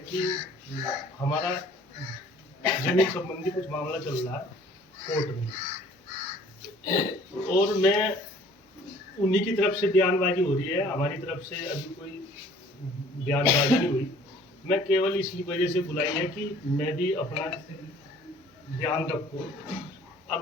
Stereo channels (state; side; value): normal; both; correlation 0.53